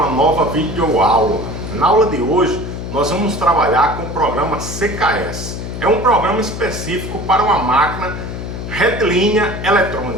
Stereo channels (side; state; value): left; noise; hum, 7 dB below the sound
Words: a nova videoaula. Na aula de hoje, nós vamos trabalhar com o programa CKS. É um programa específico para uma máquina retilínea